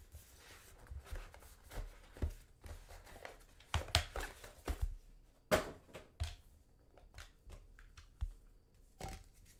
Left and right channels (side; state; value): both; identical; correlation 1.00